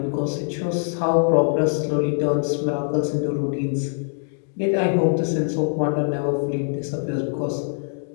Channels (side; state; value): right; silent; digital silence